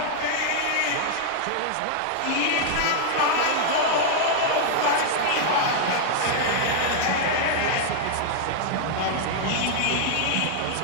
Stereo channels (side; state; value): both; different; correlation -0.01